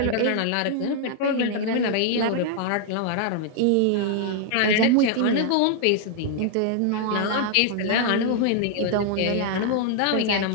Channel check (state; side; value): different; both; correlation 0.00